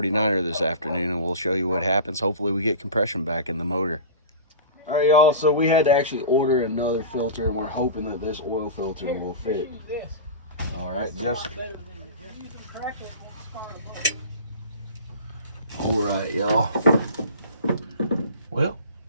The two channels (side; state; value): both; inverted; correlation -0.33